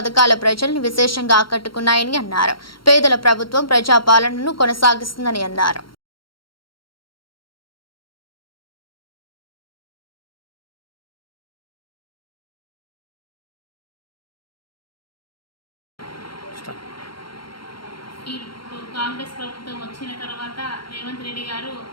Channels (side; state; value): right; late; 0.73 ms